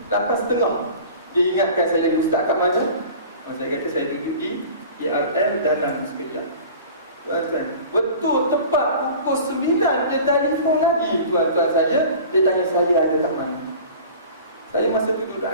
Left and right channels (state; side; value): inverted; both; correlation -0.41